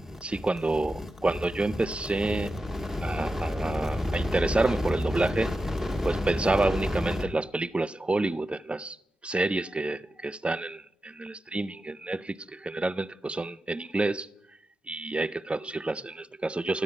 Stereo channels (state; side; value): normal; both; correlation 0.91